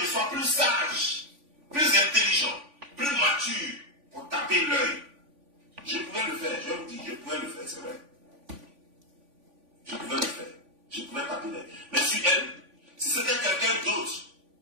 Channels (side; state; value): left; late; 3.5 ms